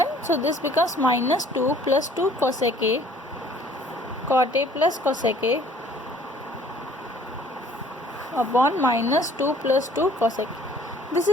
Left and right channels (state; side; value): normal; both; correlation 0.55